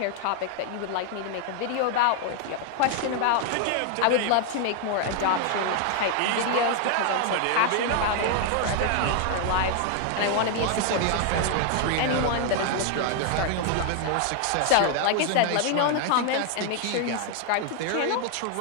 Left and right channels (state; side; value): different; both; correlation 0.00